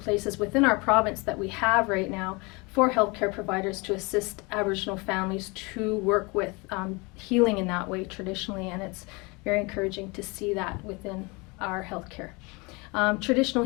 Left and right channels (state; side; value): quieter; right; 27.4 dB